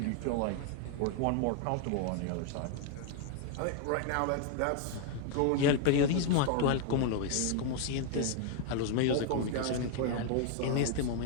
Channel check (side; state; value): both; different; correlation 0.00